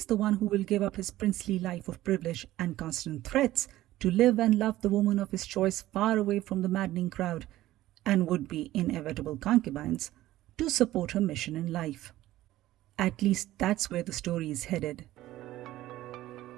the one who will give up his princely life of privilege and constant threats to live and love the woman of his choice far away from the maddening crowd and would-be inevitable concubines to support her mission in life. At least that's where the story is headed.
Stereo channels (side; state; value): left; quieter; 15.4 dB